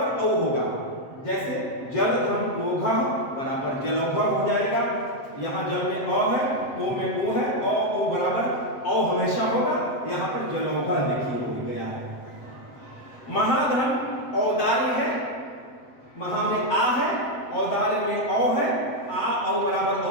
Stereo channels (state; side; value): late; right; 7.8 ms